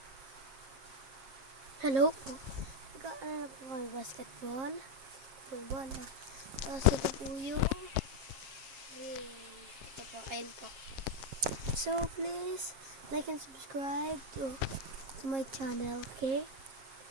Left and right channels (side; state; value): left; late; 7.4 ms